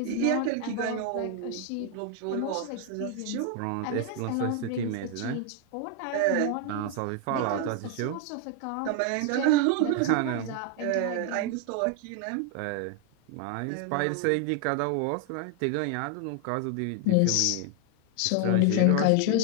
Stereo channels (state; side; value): different; both; correlation 0.00